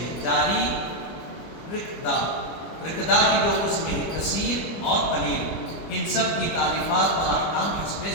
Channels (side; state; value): right; late; 25 ms